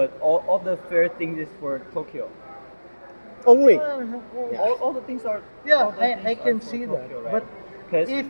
all the fair things is for Tokyo. Only. All the things are Yeah, all the I things can are for see that. Tokyo, right? But Because if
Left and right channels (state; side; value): inverted; both; correlation -1.00